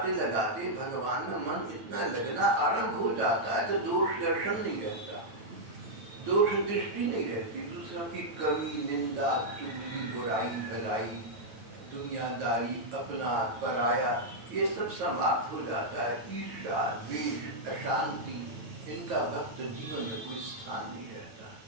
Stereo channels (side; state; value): left; late; 9.1 ms